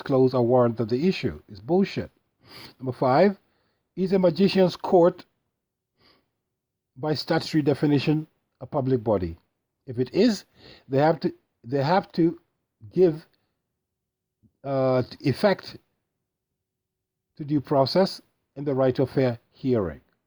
a warrant that they issue. It's bullshit. Number 5, is a magician's court, by statutory definition, a public body? If it is, they have to give effect to due process and the right of fair hearing.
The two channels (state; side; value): identical; both; correlation 1.00